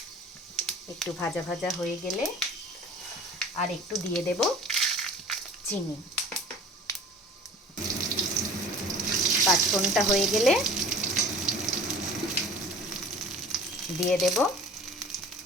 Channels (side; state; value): both; normal; correlation 0.44